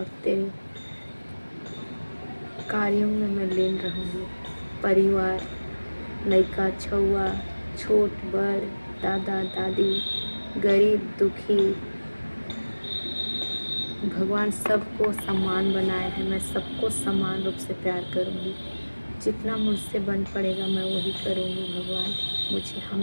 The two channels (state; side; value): inverted; both; correlation -1.00